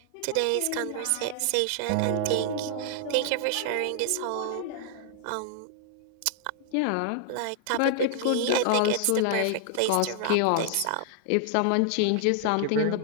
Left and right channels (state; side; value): different; both; correlation -0.01